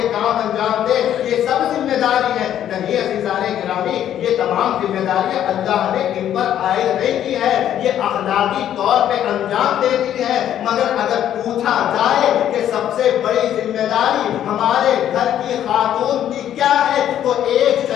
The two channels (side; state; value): right; quieter; 10.8 dB